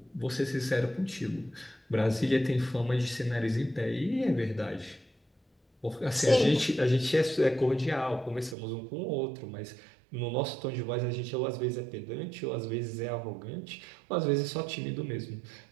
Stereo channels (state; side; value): drops out; left; at 8.6 s